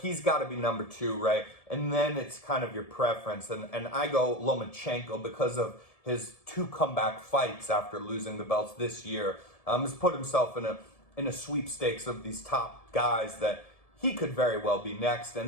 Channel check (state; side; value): late; right; 1.7 ms